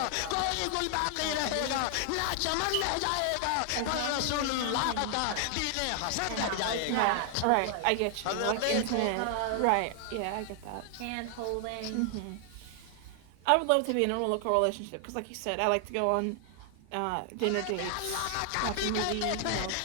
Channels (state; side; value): different; both; correlation 0.00